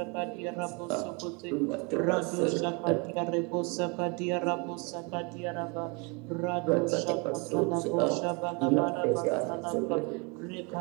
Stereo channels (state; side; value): quieter; left; 30.7 dB